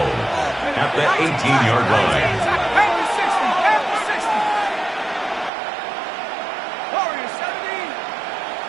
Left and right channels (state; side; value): drops out; left; at 5.5 s